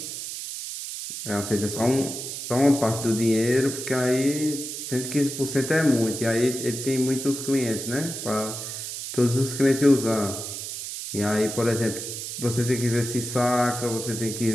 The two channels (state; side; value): noise; right; hiss, 7 dB below the sound